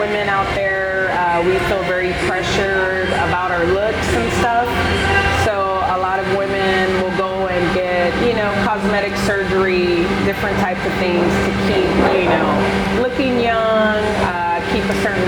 out there, we feel very pressured about our looks and stuff. So a lot of women will go and get, you know, cosmetic surgery, different types of things to keep, you know, looking young, keep a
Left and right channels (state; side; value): identical; both; correlation 1.00